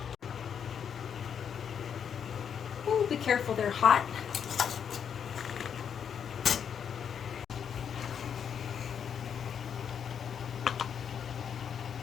Ooh, be careful, they're hot.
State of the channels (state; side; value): quieter; right; 7.8 dB